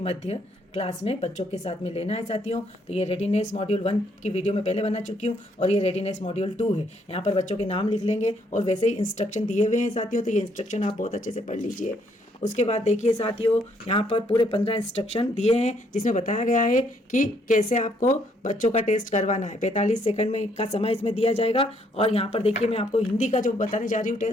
मध्य क्लास में बच्चों के साथ में लेना है साथियों। तो ये रेडीनेस मॉड्यूल 1 की वीडियो मैं पहले बना चुकी हूँ और ये रेडीनेस मॉड्यूल 2 है। यहाँ पर बच्चों के नाम लिख लेंगे और वैसे ही इंस्ट्रक्शन दिए हुए हैं साथियों, तो ये इंस्ट्रक्शन आप बहुत अच्छे से पढ़ लीजिए। उसके बाद देखिए साथियों, यहाँ पर पूरे 15 इंस्ट्रक्शन दिए हैं जिसमें बताया गया है कि कैसे आपको बच्चों का टेस्ट करवाना है। 45 सेकंड में का समय इसमें दिया जाएगा। और यहाँ पर देखिए मैं आपको हिंदी का जो बताने जा रही हूँ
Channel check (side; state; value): both; normal; correlation 0.69